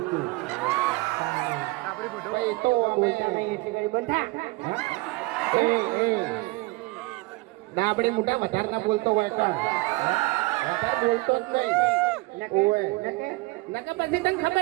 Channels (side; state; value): left; quieter; 22.9 dB